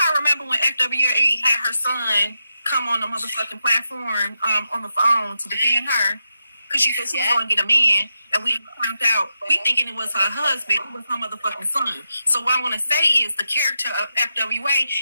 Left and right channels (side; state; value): both; inverted; correlation -0.86